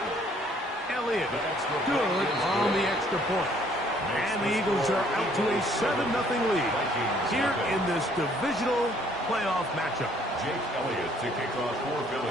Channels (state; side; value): normal; both; correlation 0.62